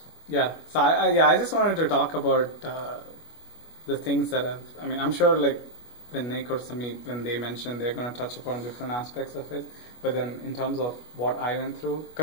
Yeah. So I just wanted to talk about the things that I'm sure like when Nick or Samit, when they mention, they're going to touch upon different aspects of it. But then in terms of what I went through,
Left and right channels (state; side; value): late; right; 25 ms